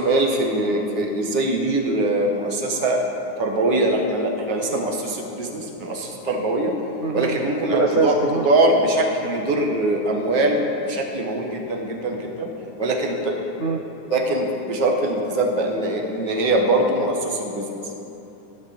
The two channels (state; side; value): late; right; 9.6 ms